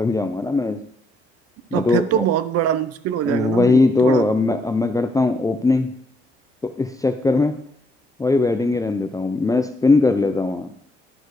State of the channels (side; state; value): both; normal; correlation 0.73